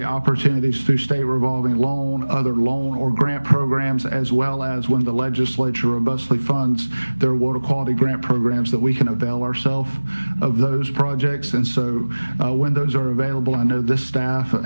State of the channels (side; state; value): both; inverted; correlation -1.00